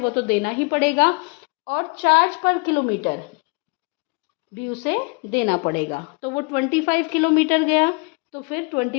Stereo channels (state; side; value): quieter; right; 32.1 dB